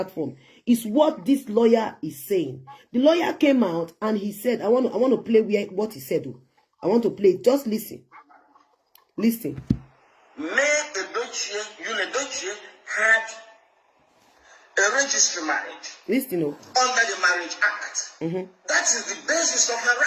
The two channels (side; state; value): both; identical; correlation 1.00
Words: is what this lawyer is saying. The lawyer came out and he said, I want to play what he said. I want to play. Just listen. Listen. Mayyuledochie, Yul Edochie had a registered marriage. Listen. Under the Marriage Act. That is the basis of her